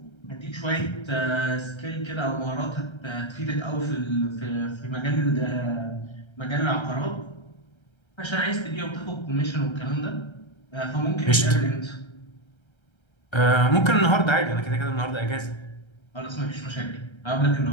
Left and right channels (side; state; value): right; late; 1.3 ms